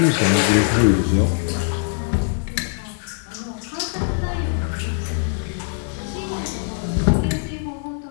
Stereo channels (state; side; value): silent; right; digital silence